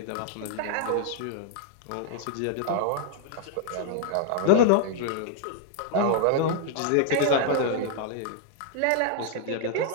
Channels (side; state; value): both; different; correlation -0.01